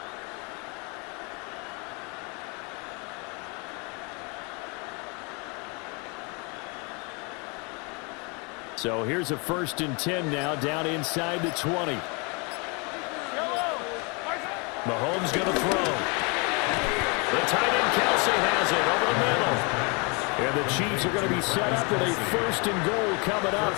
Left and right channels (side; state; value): right; quieter; 31.8 dB